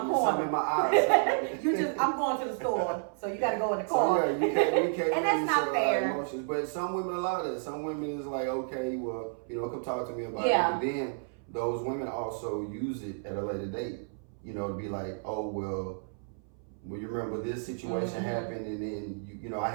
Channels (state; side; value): silent; left; 57 dB below the other